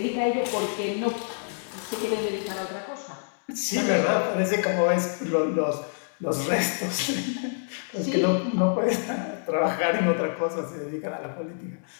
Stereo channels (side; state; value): right; silent; digital silence